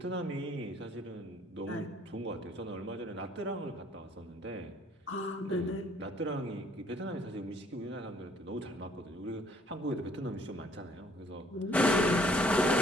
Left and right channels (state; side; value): normal; both; correlation 0.61